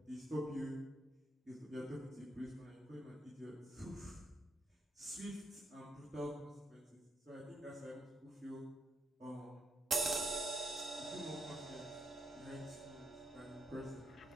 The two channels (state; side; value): normal; both; correlation 0.79